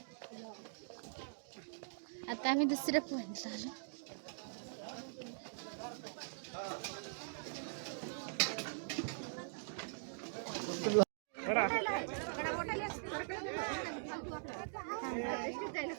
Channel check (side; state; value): left; silent; digital silence